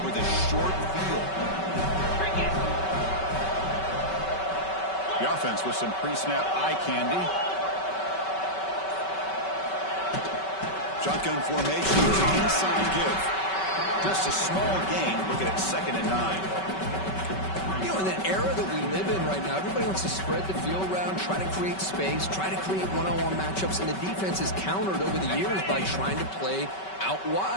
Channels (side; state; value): right; late; 5.3 ms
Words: with a short field. The offense with some pre-snap eye candy. Shotgun formation, inside give. Just a small gain, looking at 2nd and 9. You know, in the era that we live in right now, everybody wants to spread the field around, try to create space, try to create one-on-one matchups, and the defense is countered over the years by trying to play out